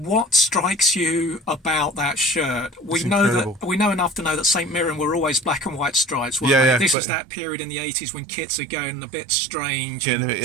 strikes you about that shirt? We know enough to know that St Mirren were always black and white stripes. This is that period in the 80s when kits are going a bit strange and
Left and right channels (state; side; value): drops out; left; at 7.0 s